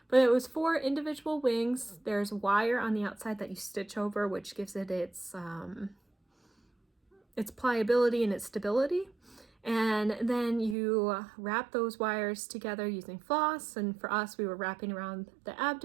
But it was 4 individual wings. There's wire on the outside that you stitch over, which gives it its pliability and its stability. And then you wrap those wires together using floss, and for us, we were wrapping around the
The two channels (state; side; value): drops out; left; at 10.8 s